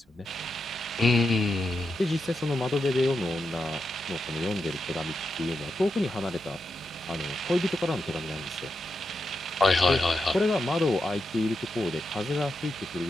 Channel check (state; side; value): normal; both; correlation 0.86